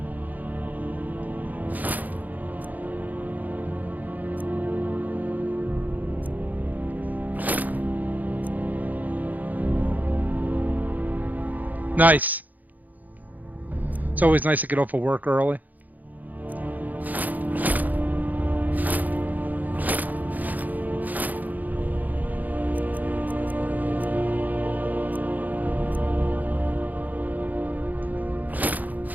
Nice. It's always nice to get off of work early.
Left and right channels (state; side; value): late; left; 0.081 ms